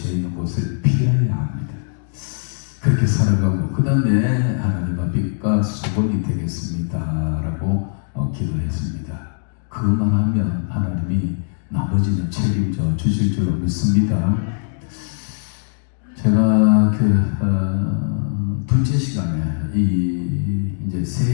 있는 곳을 피해야 합니다. 그렇게 살아가고 그 다음에 하나님 앞에 수건이 되겠습니다 라고 기도했습니다. 그것만 하면 하나님이 나머지는 책임져 주실 줄로 믿습니다. 제가 둘째 시간에 이제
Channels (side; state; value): right; silent; digital silence